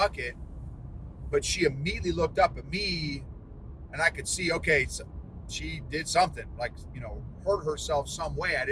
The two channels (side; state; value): both; identical; correlation 1.00